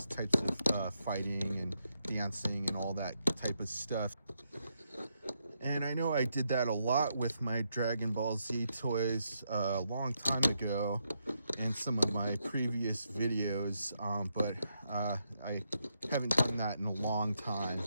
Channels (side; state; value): both; inverted; correlation -0.81